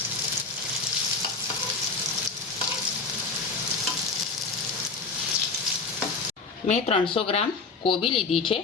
મેં 300 ગ્રામ કોબી લીધી છે।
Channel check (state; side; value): quieter; right; 4.3 dB